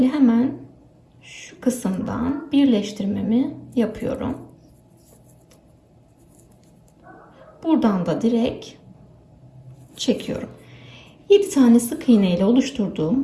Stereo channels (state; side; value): identical; both; correlation 1.00